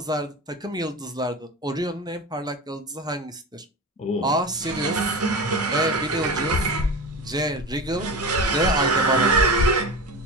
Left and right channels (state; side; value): normal; both; correlation 0.27